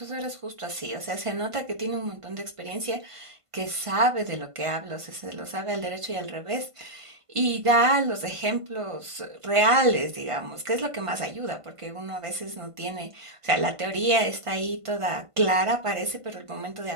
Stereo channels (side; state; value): left; late; 1.5 ms